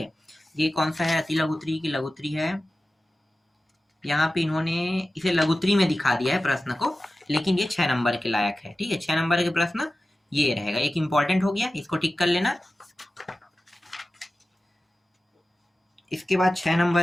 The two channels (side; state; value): both; normal; correlation 0.95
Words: ये कौन सा है, अति लघुत्री की लघुत्री है। यहाँ पे इन्होंने इसे लघुत्री में दिखा दिया है प्रश्न को, लेकिन ये 6 नंबर के लायक है। ठीक है, 6 नंबर के प्रश्न ये रहेगा। एक इंपॉर्टेंट हो गया, इसको टिक कर लेना। इसके बाद 6